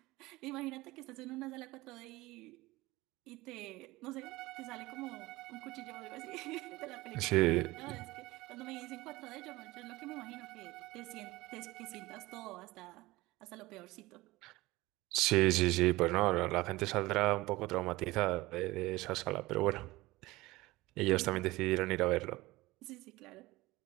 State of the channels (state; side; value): quieter; left; 19.9 dB